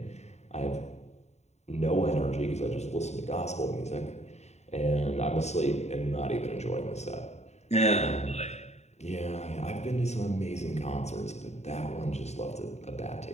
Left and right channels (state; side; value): late; right; 0.32 ms